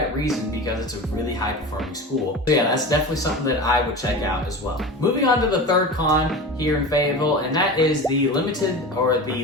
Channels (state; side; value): normal; both; correlation 0.30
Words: reason, because it's a really high performing school. So yeah, that's definitely something that I would check out as well. Moving on to the third con here in Fayetteville, and that is the limited or